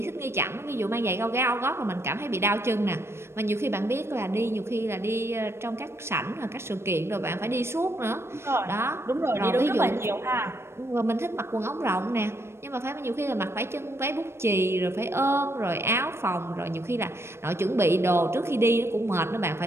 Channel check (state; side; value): late; left; 0.12 ms